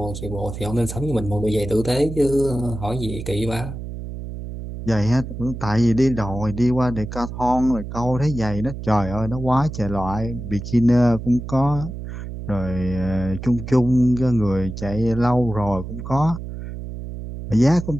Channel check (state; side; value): noise; right; hum, 8 dB below the sound